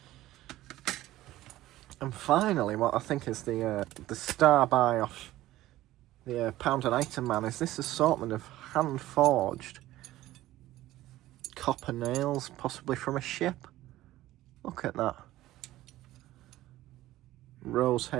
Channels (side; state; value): left; quieter; 15.6 dB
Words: And finally, what I think is the star buy off the Pound and Item Man is this assortment of hand-forged copper nails, possibly from a ship. Look at that. Rose